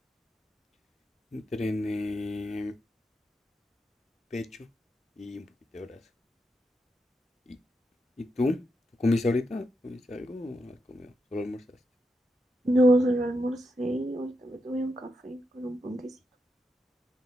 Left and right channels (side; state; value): both; normal; correlation 0.84